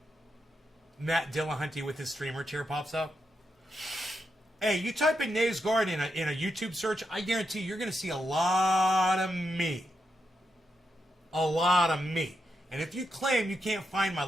Matt Dillahunty with his streamer chair pops up. Hey, you type in Nays Garden in a YouTube search, I guarantee you're going to see a lot of me. A lot of me. And if you claim you can't find my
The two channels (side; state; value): both; normal; correlation 0.84